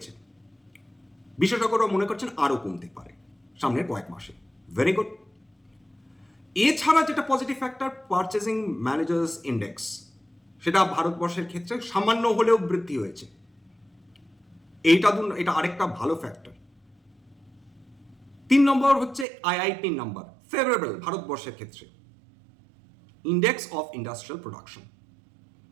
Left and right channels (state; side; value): drops out; left; at 19.2 s